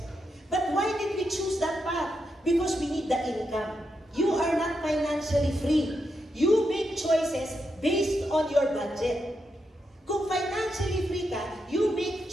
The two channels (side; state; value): both; normal; correlation 0.84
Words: But why did we choose that path? Because we need the income. You are not financially free. You make choices based on your budget. Kung financially free ka, you make